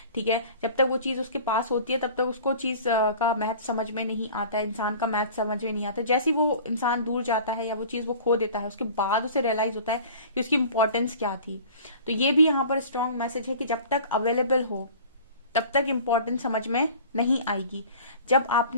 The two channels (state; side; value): inverted; both; correlation -0.43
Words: ठीक है, जब तक वो चीज उसके पास होती है तब तक उसको चीज का महत्व समझ में नहीं आता है, इंसान का महत्व समझ में नहीं आता। जैसे ही वो इंसान दूर जाता है या वो चीज वो खो देता है, उसके बाद उसे रियलाइज होता है कि उसकी इंपॉर्टेंस क्या थी। तो ये भी यहाँ पर स्ट्रॉन्ग मैसेज है कि जब तक अवेलेबल हो, तब तक इम्पोर्टेंस समझ में नहीं आएगी। जब